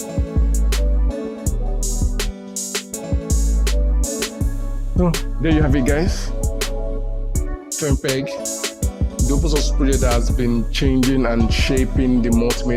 So, there you have it, guys. FFmpeg, the open source project that has been changing and shaping the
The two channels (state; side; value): identical; both; correlation 1.00